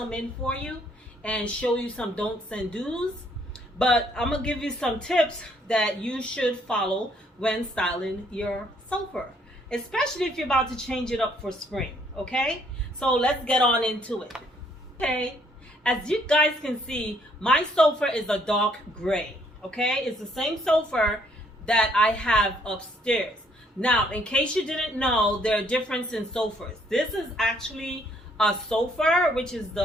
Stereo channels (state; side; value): normal; both; correlation 0.66